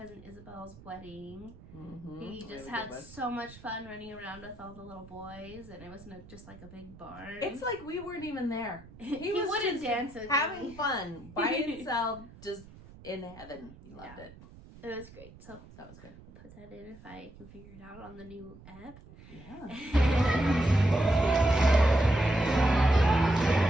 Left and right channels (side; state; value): right; noise; rumble, 20 dB below the sound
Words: Isabel's wedding. He just had so much fun running around with all the little boys, and it wasn't just like a big barn. It's like we weren't even there. He was wouldn't just dance with having me. fun by himself, just in heaven. He loved it. It was great. So That was good. I'll put that in if I can figure it out on the new app. Yeah.